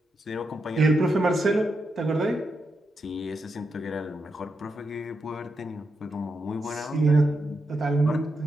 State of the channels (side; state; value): both; normal; correlation 0.84